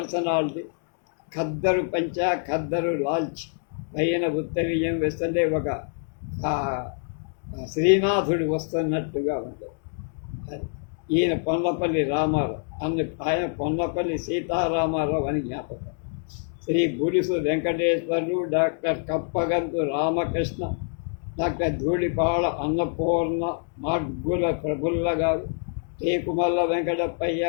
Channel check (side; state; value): right; silent; 61 dB below the other